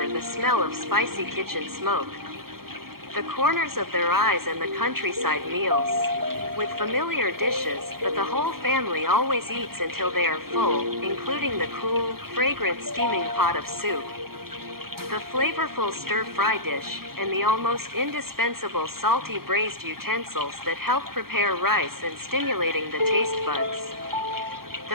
the smell of spicy kitchen smoke, the corners of their eyes and the countryside meals, with familiar dishes, but the whole family always eats until they are full, including the cool, fragrant steaming pot of soup, the flavorful stir-fry dish, and the almost indispensable salty braised utensils that help prepare rice and stimulating the taste buds.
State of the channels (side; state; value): left; late; 0.94 ms